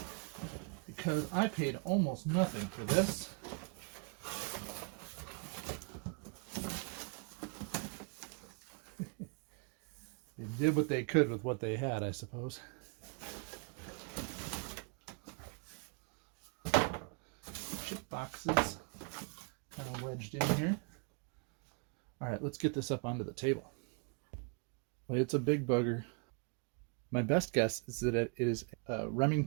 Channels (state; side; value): quieter; left; 36.6 dB